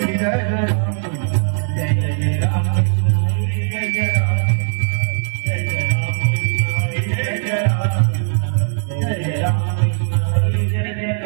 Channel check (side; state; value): left; silent; 60 dB below the other